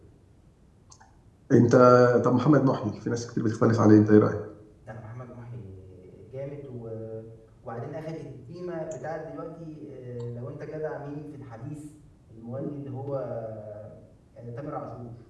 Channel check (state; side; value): identical; both; correlation 1.00